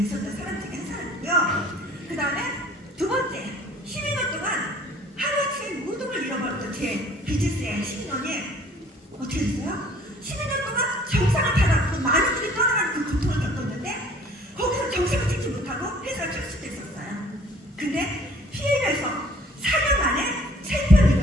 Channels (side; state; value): both; normal; correlation 0.55